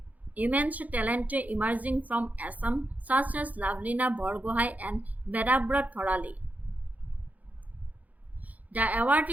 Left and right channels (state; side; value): late; left; 0.077 ms